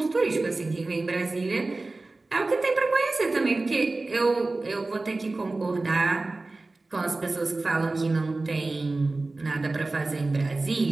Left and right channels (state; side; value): quieter; left; 3.3 dB